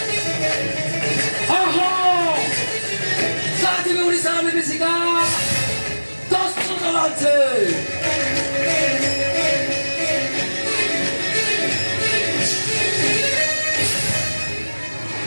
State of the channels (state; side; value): inverted; both; correlation -1.00